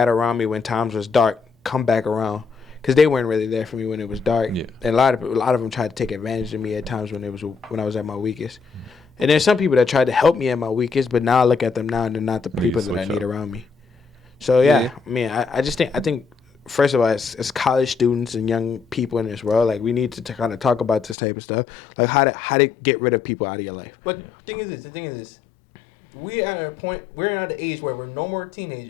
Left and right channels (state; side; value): drops out; right; at 21.2 s